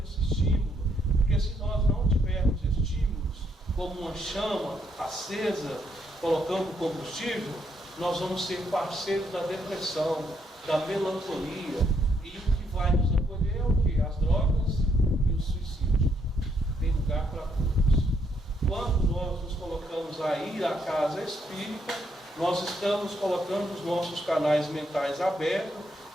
esse estímulo, porque se nós não tivermos estímulos, como uma chama acesa, colocando combustível, nós vamos ser parceiros da depressão, da melancolia, e o que vai nos acolher é o quê? As drogas e o suicídio. Tem lugar para todos. Quando nós nos colocamos a ir à casa espírita, nós estamos colocando os nossos canais mentais abertos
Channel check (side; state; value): both; normal; correlation 0.74